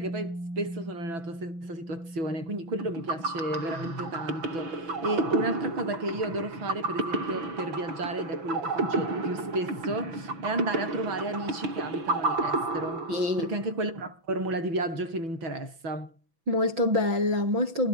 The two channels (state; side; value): late; left; 6.1 ms